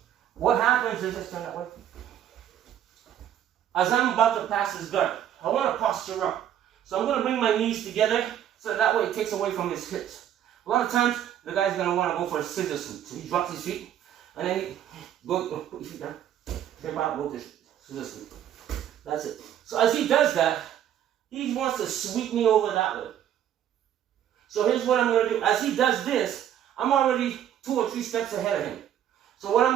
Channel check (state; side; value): quieter; left; 10.5 dB